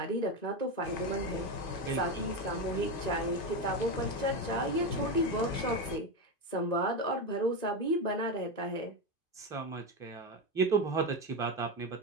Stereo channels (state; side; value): late; right; 2.5 ms